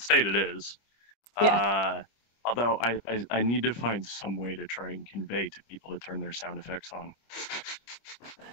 state it is. Yeah. Although I need to find some way to try and convey to people to turn their sound effects on.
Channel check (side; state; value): right; late; 25 ms